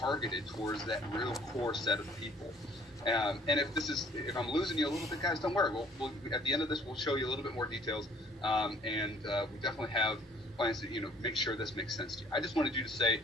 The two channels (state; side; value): normal; both; correlation 0.57